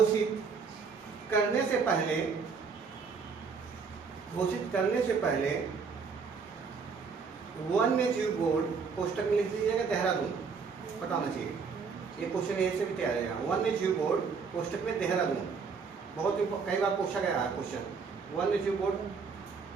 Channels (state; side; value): quieter; left; 5.4 dB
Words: करने से पहले वन्य जीव बोर्ड, कोष्टक में लिख दीजिएगा देहरादून, पता होना चाहिए, ये क्वेश्चन ऐसे भी तैयार है। वन्य जीव बोर्ड कोष्टक में देहरादून, बहुत कई बार पूछा गया है क्वेश्चन। वन्य जीव बोर्ड